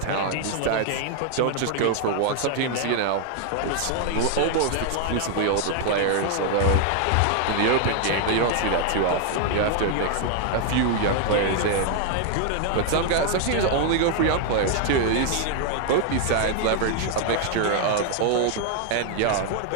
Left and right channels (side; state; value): both; different; correlation 0.00